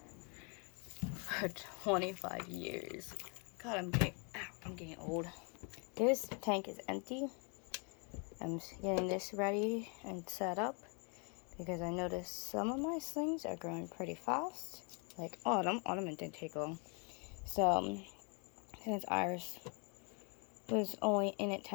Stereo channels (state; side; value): quieter; right; 35.8 dB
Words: for 25 years. God, I'm getting old. This tank is empty. I'm getting this ready and set up because I noticed some of my slings are growing pretty fast. Like autumn didn't take long. So since Iris was only in it